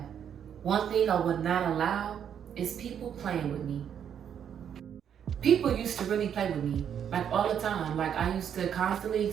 One thing I would not allow is people playing with me. People used to really play with me, like all the time. Like I used to constantly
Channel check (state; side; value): quieter; left; 8.7 dB